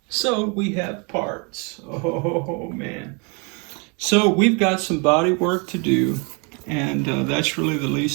So we have parts. Oh man. So we've got some body work to do, and that's really the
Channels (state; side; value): quieter; left; 33.1 dB